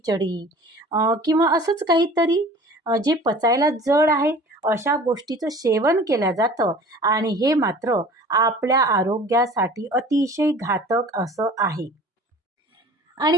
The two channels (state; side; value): normal; both; correlation 0.45